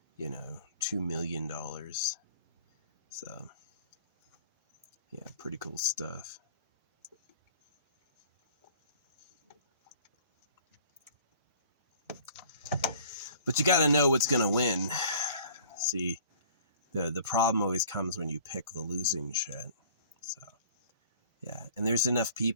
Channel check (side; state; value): both; inverted; correlation -0.50